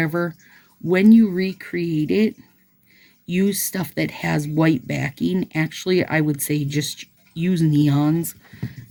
when you recreate it, use stuff that has white backing. Actually, I would say just use neons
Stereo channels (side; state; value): both; identical; correlation 1.00